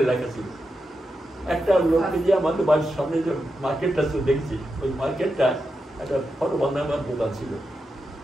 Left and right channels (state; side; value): normal; both; correlation 0.88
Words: লেখা ছিল। একটা লোককে দিয়ে আমাদের বাড়ির সামনে যে মার্কেটটা দেখছি, ওই মার্কেটটা একটা ফটো বান্ধাবার দোকান ছিল,